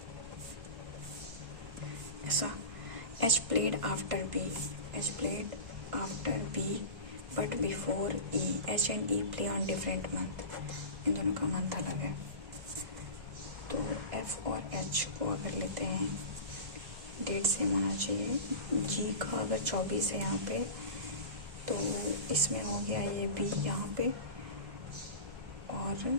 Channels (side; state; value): left; late; 1.6 ms